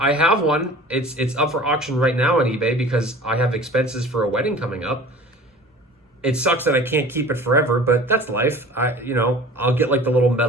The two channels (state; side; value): normal; both; correlation 0.43